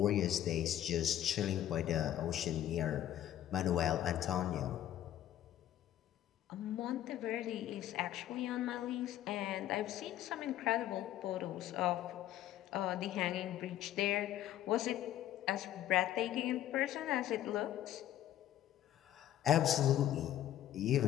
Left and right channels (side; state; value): right; quieter; 12.2 dB